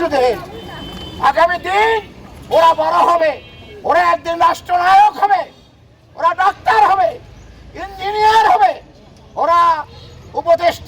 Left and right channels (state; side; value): identical; both; correlation 1.00